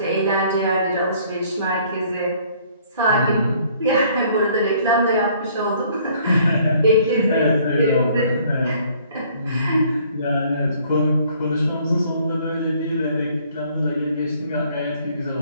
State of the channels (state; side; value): inverted; both; correlation -0.60